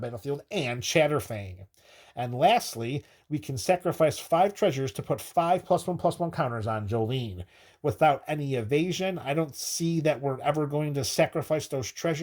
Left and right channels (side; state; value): both; identical; correlation 1.00